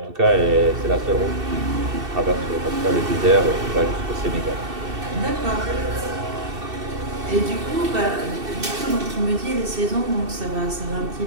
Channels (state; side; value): late; left; 2.7 ms